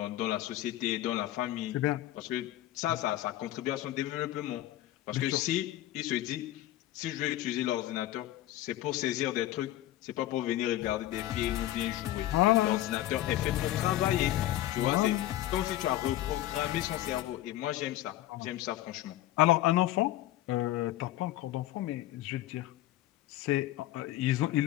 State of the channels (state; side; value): quieter; right; 14.5 dB